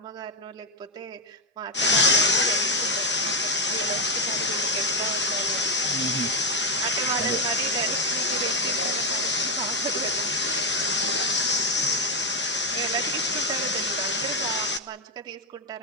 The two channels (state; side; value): normal; both; correlation 0.07